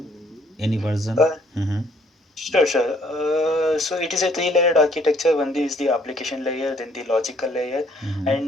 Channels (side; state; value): both; normal; correlation 0.63